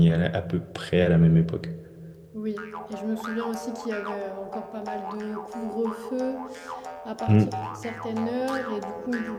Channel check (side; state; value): both; identical; correlation 1.00